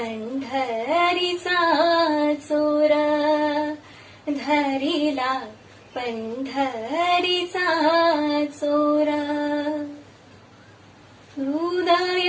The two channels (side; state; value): both; identical; correlation 1.00